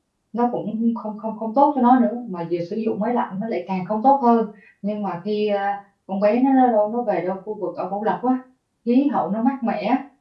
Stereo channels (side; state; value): both; identical; correlation 1.00